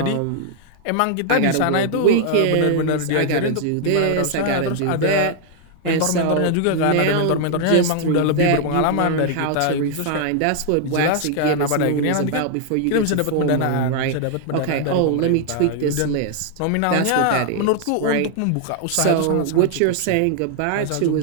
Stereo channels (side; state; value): both; different; correlation 0.00